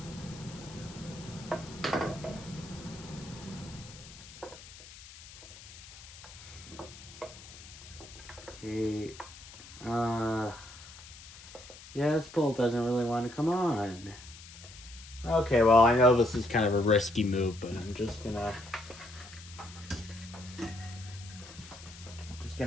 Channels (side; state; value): left; noise; hiss, 17 dB below the sound